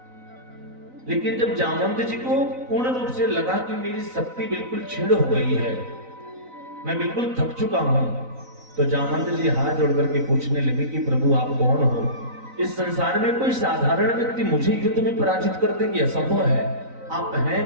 लेकिन जब जामंत जी को पूर्ण रूप से लगा कि मेरी शक्ति बिल्कुल क्षीण हो गई है, मैं बिल्कुल थक चुका हूं, तो जामंत जी हाथ जोड़ करके पूछने लगे कि प्रभु आप कौन हो? इस संसार में कोई साधारण व्यक्ति मुझे युद्ध में पराजित कर देंगे, असंभव है। आप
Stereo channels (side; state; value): left; late; 3.9 ms